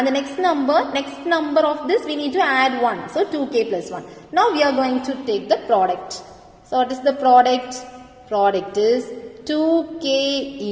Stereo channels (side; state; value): both; identical; correlation 1.00